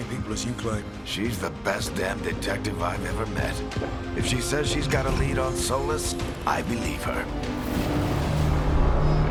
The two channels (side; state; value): both; identical; correlation 1.00